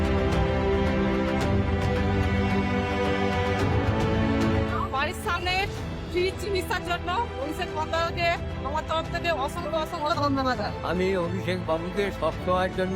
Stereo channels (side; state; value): both; identical; correlation 1.00